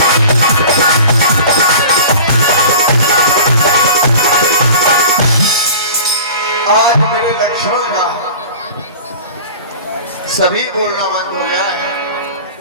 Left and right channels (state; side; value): inverted; both; correlation -0.40